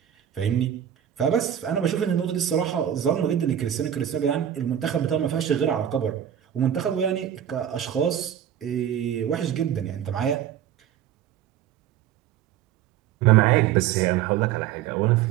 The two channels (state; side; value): quieter; left; 10.2 dB